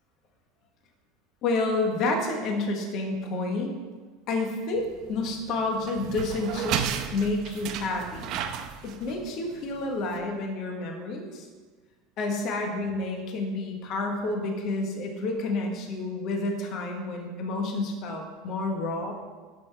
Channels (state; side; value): normal; both; correlation 0.32